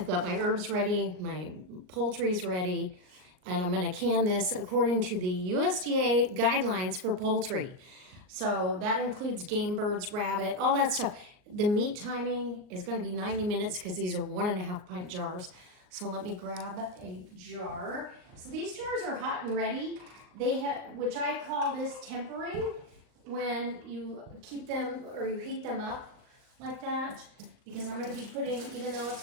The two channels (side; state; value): left; late; 39 ms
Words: got my herbs ready, my poultry's ready, and I'm gonna can this according to the USDA guidelines for poultry. So that includes game birds, rabbit, all that stuff. The meat timing is gonna be 90 minutes because these are 1.5 pint jars. So let me grab a jar. So these jars are hot and ready. They have, which I call this tempering, when you keep them or you heat them up like that, because I'm gonna be putting, even though